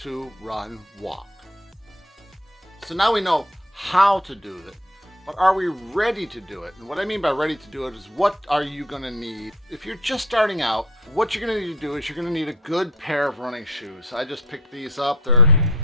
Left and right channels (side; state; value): both; normal; correlation 0.46